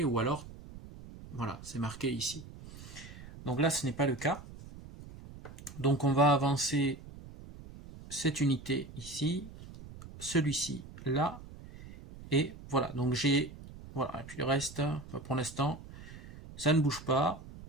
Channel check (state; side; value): noise; right; rumble, 15 dB below the sound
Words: ou alors, voilà, c'est marqué ici. Donc là ce n'est pas le cas. Donc on va avancer cette unité ici, celui-ci là, et voilà, donc j'ai, voilà, et puis le reste, pour l'instant, ça ne bouge pas.